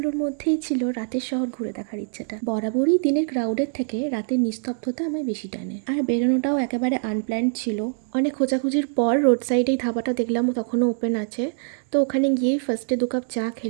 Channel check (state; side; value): silent; left; digital silence